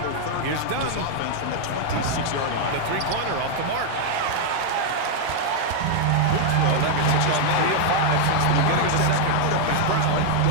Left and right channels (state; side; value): different; both; correlation 0.00